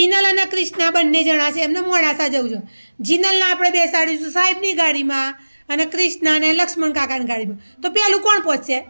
અને કૃષ્ણા બંને જણા છે, એમને મોડાસા જવું છે. જીનલને આપણે બેસાડીશું સાહેબની ગાડીમાં અને કૃષ્ણાને લક્ષ્મણ કાકાની ગાડીમાં. તો પેલું કોણ પહોંચશે?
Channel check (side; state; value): both; inverted; correlation -1.00